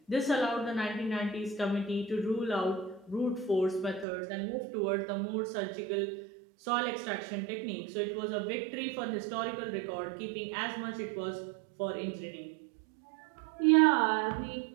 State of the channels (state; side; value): drops out; left; at 4.0 s